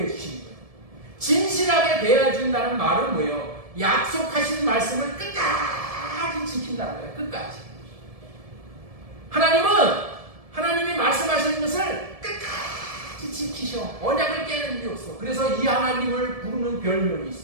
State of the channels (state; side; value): late; left; 1.7 ms